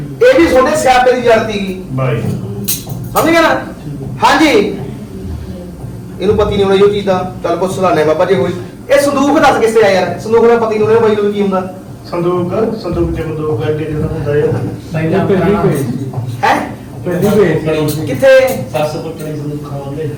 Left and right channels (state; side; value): identical; both; correlation 1.00